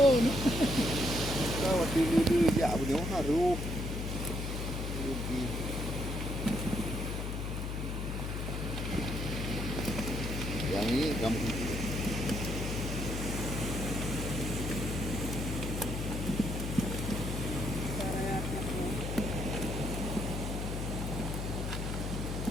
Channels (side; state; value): left; noise; hum, 3 dB below the sound